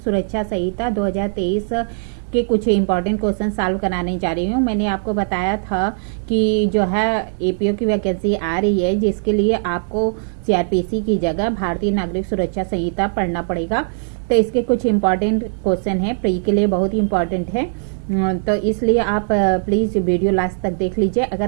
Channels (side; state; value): left; silent; digital silence